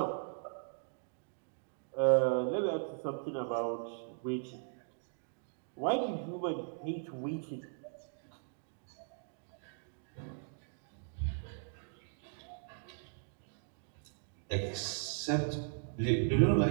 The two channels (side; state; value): left; silent; digital silence